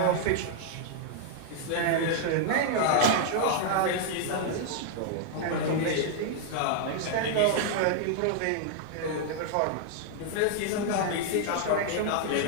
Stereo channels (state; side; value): different; both; correlation 0.00